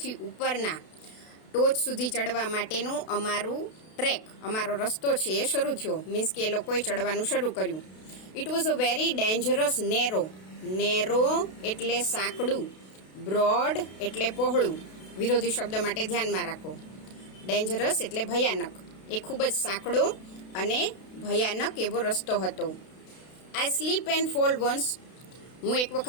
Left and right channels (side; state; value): right; late; 32 ms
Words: ઉપરના ટોચ સુધી ચડવા માટેનું અમારો રસ્તો છે એ શરૂ થયો. મીન્સ કે એ લોકોએ ચડવાનું શરૂ કર્યું. It was a very dangerous narrow એટલે સાંકડું, બ્રોડ એટલે પહોળું. વિરોધી શબ્દ માટે ધ્યાનમાં રાખો. ડેન્જરસ એટલે ભયાનક. એ ખૂબ જ સાંકડો અને ભયાનક એવો રસ્તો હતો. I slip and fall once. હું એક